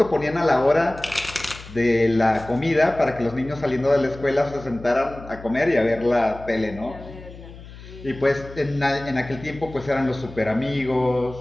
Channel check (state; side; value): noise; left; hum, 16 dB below the sound